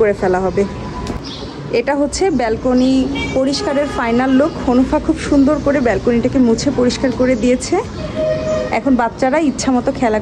ফেলা হবে। এটা হচ্ছে ব্যালকনি পরিষ্কারের ফাইনাল লুক। হনুফা খুব সুন্দর করে ব্যালকনিটাকে মুছে পরিষ্কার করে দিয়েছে। এখন বাচ্চারা ইচ্ছা মতো খেলা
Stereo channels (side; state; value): both; identical; correlation 1.00